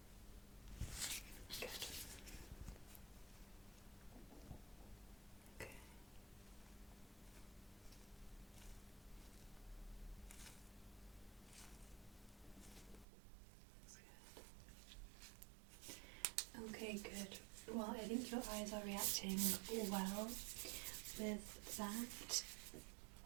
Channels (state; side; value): drops out; left; at 13.1 s